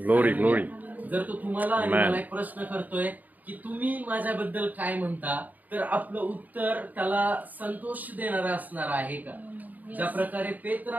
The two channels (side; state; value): left; late; 0.081 ms